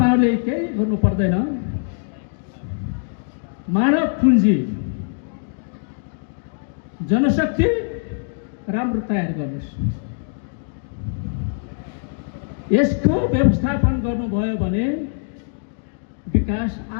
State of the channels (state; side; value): silent; right; digital silence